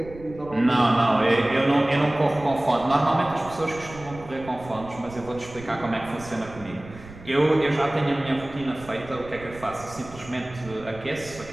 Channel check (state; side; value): noise; right; rumble, 17 dB below the sound